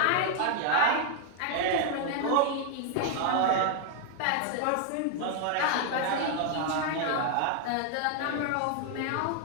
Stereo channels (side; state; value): both; different; correlation 0.00